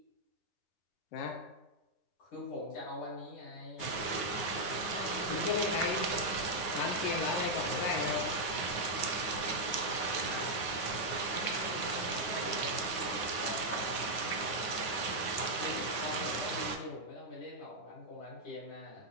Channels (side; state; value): right; late; 9.6 ms